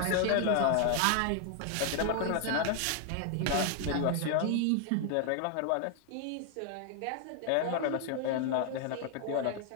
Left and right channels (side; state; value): both; different; correlation 0.00